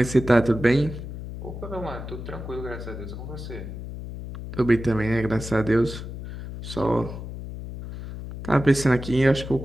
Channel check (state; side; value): noise; left; hum, 9 dB below the sound